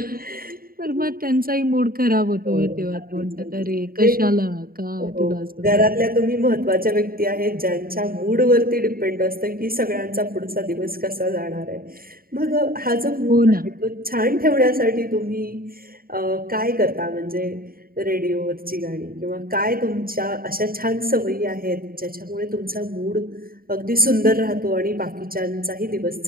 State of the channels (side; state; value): left; late; 0.43 ms